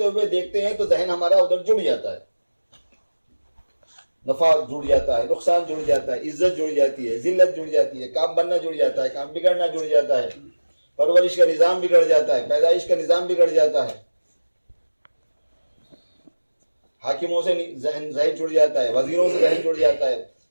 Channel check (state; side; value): inverted; both; correlation -1.00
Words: ہوئے دیکھتے ہیں تو ذہن ہمارا ادھر جڑ جاتا ہے، نفع جڑ جاتا ہے، نقصان جڑ جاتا ہے، عزت جڑ جاتی ہے، ذلت جڑ جاتی ہے، کام بننا جڑ جاتا ہے، کام بگڑنا جڑ جاتا ہے، پرورش کا نظام بگڑ جاتا ہے، پیدائش کا نظام بگڑ جاتا ہے، حاکموں سے ذہن جڑ جاتا ہے، وزیروں سے ذہن جڑ جاتا ہے،